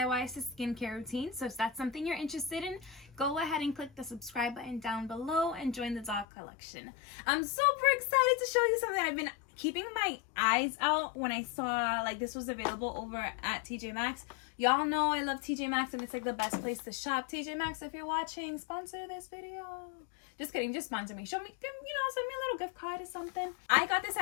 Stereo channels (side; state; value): right; drops out; at 6.2 s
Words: to skincare routines. So if that's something you're interested in, go ahead and click the subscribe button down below and join the doll collection. I'm super excited to show you something I've been keeping my eyes out when I saw like this was available over at TJ Maxx. Y'all know I love TJ Maxx and it's like the best place to shop. TJ Maxx, if you're watching, sponsor this video. Just kidding, just sponsor me. Show me, send me a little gift card or something. I got this